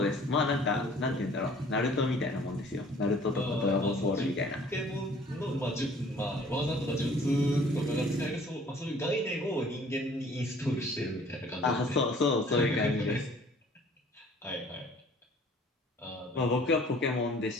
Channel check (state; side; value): normal; both; correlation 0.54